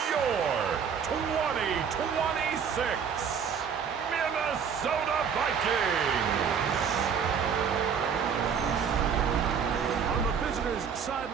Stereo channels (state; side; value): quieter; left; 7.0 dB